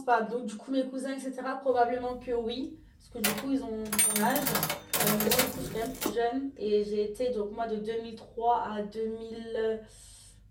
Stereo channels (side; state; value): both; identical; correlation 1.00